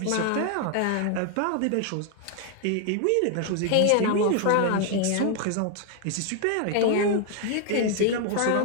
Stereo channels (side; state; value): both; different; correlation 0.00